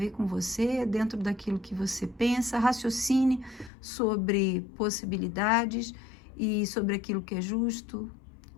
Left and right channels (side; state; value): right; drops out; at 3.7 s